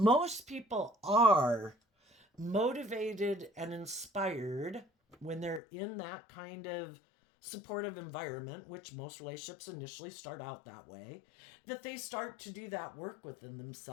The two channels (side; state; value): right; drops out; at 5.6 s